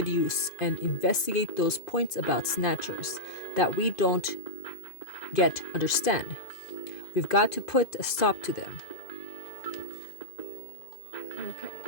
use and investigate those points about snatchers that we don't yet understand. We've got to put a stop to them. Okay.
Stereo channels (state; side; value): late; right; 2.0 ms